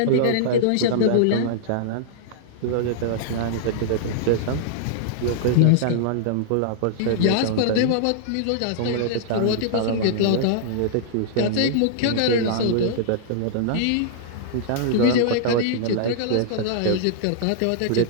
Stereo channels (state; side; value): different; both; correlation -0.02